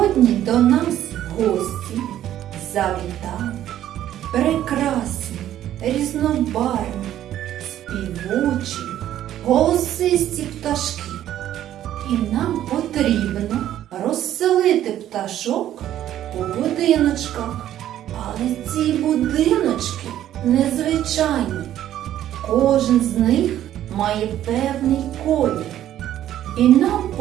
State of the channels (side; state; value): left; quieter; 12.0 dB